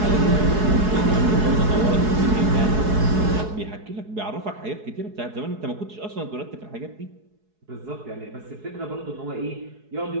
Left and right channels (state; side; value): late; left; 4.7 ms